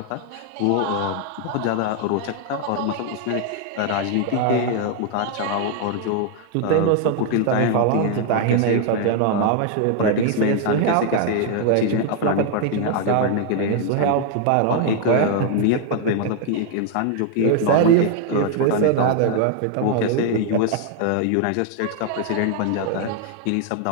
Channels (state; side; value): different; both; correlation 0.00